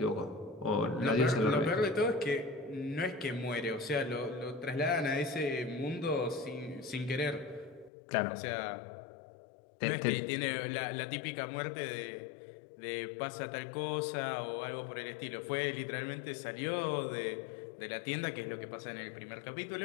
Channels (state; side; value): drops out; right; at 7.9 s